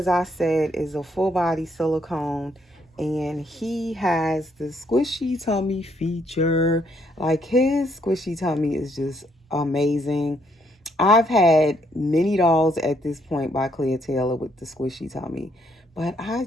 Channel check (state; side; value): normal; both; correlation 0.71